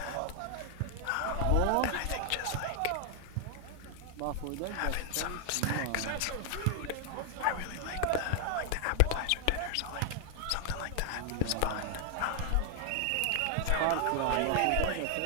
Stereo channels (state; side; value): different; both; correlation 0.00